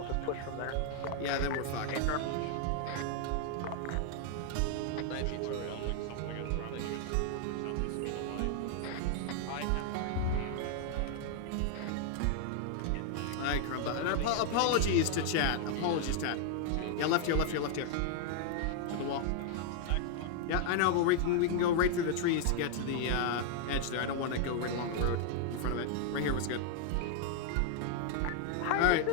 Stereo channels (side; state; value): both; different; correlation 0.00